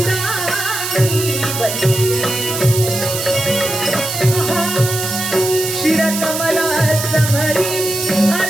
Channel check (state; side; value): noise; right; hiss, 4 dB below the sound